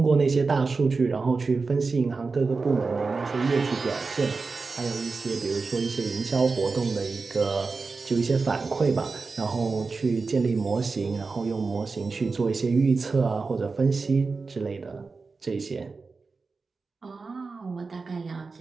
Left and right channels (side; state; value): left; quieter; 4.3 dB